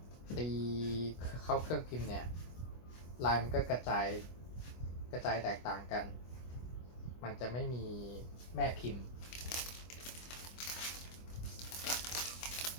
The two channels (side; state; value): right; late; 25 ms